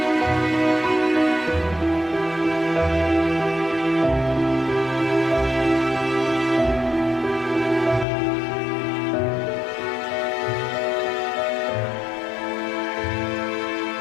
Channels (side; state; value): right; drops out; at 8.1 s